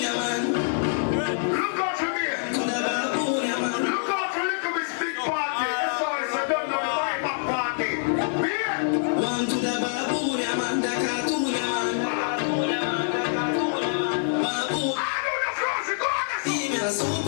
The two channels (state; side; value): silent; right; 61 dB below the other